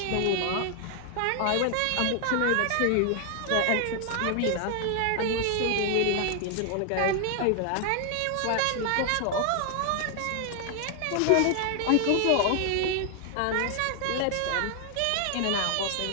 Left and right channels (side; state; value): both; different; correlation 0.00